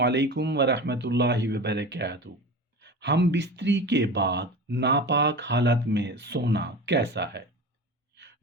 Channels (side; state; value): both; normal; correlation 0.31